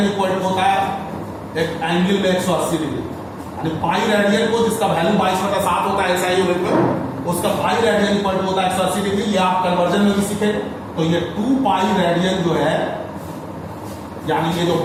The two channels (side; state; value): both; identical; correlation 1.00